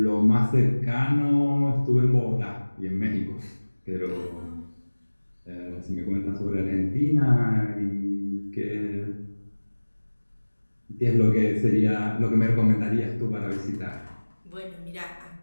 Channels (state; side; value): inverted; both; correlation -1.00